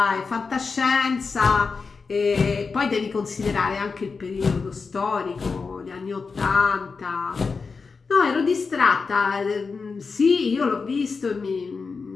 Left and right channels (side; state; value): right; quieter; 4.8 dB